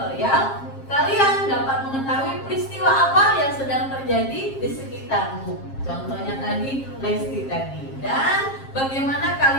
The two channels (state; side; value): late; right; 7.5 ms